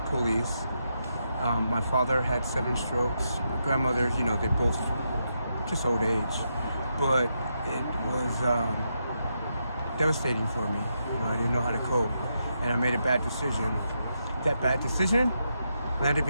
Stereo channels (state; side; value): inverted; both; correlation -0.83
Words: police. My father had 7 strokes. My grandmother, they both just old age. But it was devastating for me. You know, I didn't know how to cope, and I made a bad decision. That bad decision landed